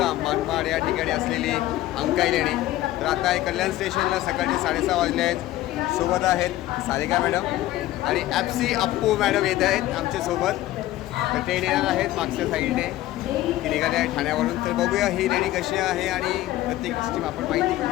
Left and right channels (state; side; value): quieter; right; 15.4 dB